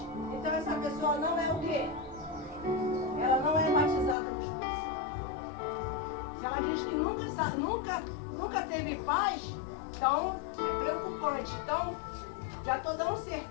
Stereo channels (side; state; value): right; drops out; at 4.2 s